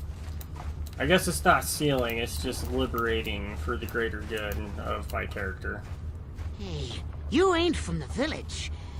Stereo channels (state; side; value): identical; both; correlation 1.00